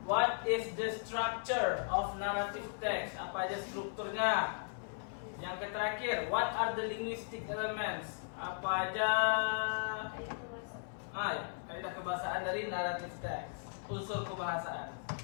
what is the structure of narrative text? Apa aja strukturnya? Yang terakhir, what are the linguistic elements? Apa aja kaidah kebahasaan dari narrative text, unsur kebahasaan.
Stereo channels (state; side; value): silent; right; 53 dB below the other